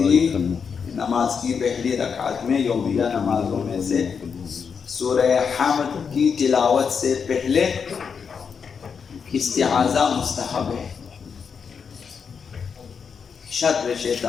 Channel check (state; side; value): quieter; right; 6.3 dB